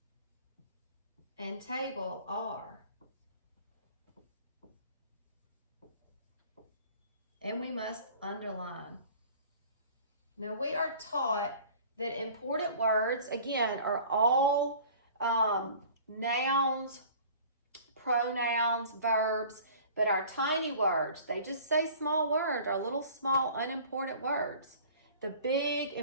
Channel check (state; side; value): inverted; both; correlation -0.46